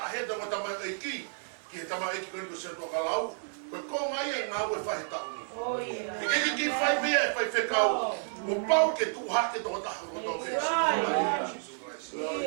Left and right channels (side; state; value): left; silent; digital silence